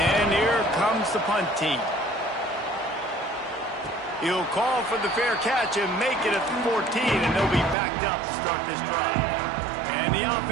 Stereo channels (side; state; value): left; drops out; at 7.8 s